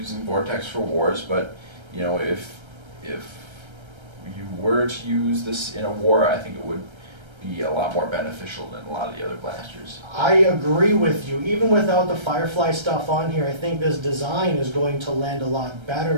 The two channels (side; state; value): left; late; 1.3 ms